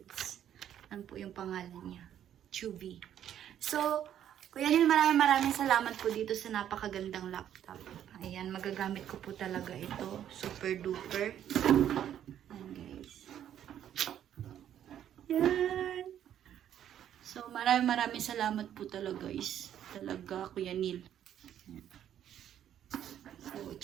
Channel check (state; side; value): quieter; left; 10.4 dB